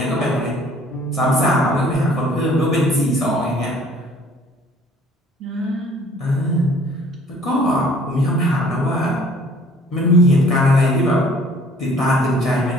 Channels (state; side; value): normal; both; correlation 0.55